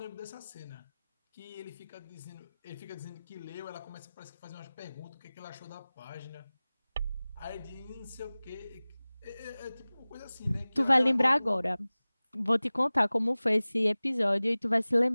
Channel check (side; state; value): both; inverted; correlation -0.99